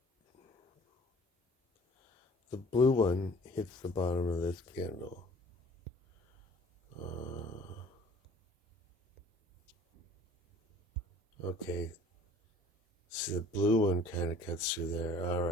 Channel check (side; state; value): both; normal; correlation 0.50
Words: the blue one hits the bottom of this candle. Okay, see the blue one kind of cuts through there. All